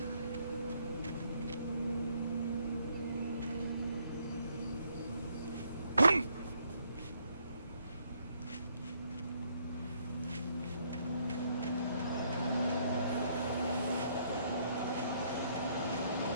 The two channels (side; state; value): both; inverted; correlation -0.70